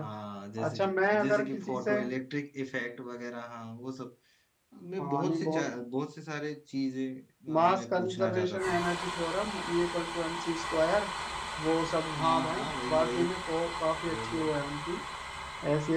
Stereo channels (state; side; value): identical; both; correlation 1.00